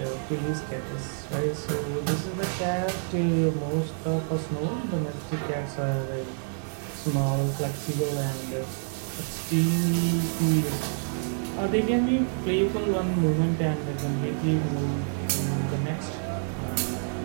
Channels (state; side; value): silent; left; 60 dB below the other